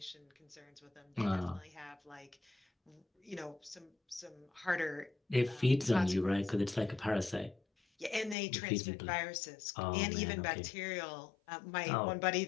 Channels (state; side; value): drops out; right; at 8.3 s